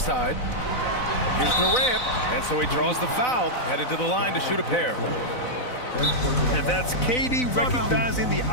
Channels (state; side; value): late; right; 4.0 ms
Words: Here's Durant. And so he draws the foul, headed to the line to shoot a pair. And that's KD recognizing the